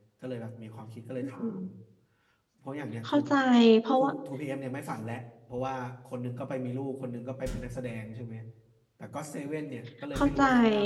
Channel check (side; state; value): both; identical; correlation 1.00